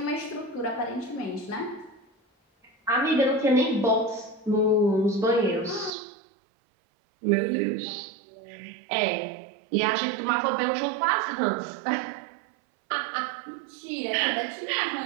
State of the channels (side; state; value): left; drops out; at 5.9 s